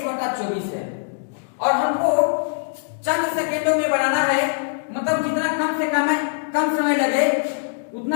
है। और हमको चंद सेकेंडों में बनाना है, मतलब जितना कम समय लगे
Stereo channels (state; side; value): silent; right; digital silence